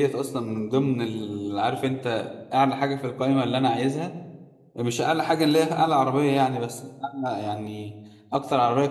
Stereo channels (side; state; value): both; identical; correlation 1.00